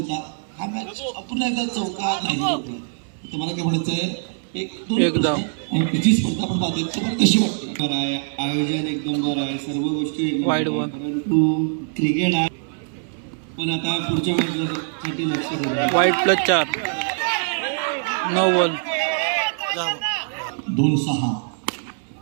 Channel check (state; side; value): silent; left; 64 dB below the other